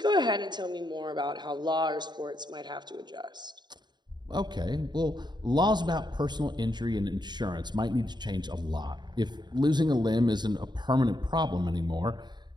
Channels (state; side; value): late; left; 0.21 ms